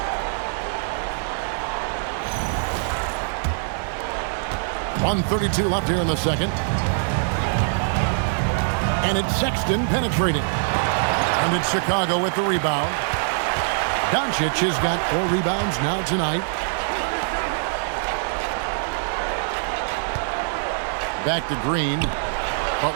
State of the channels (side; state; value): left; silent; digital silence